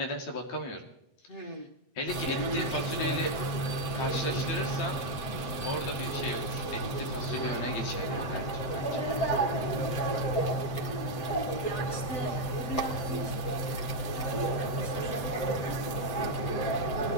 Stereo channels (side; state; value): right; late; 7.8 ms